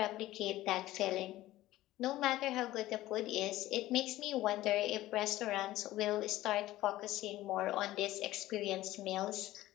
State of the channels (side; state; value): right; quieter; 15.9 dB